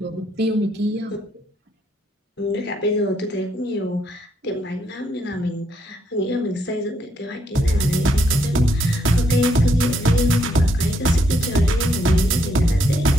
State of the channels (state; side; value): normal; both; correlation 0.74